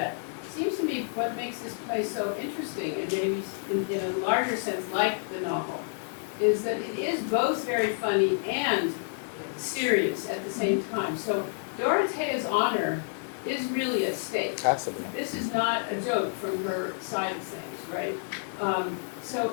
seems to me what makes this play so interesting, and maybe in a larger sense like the novel, is that it is both very funny and serious at the same time. So Dorothea's honor is really at stake. Absolutely. This is not a joke from her side of things, right? So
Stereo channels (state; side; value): silent; right; digital silence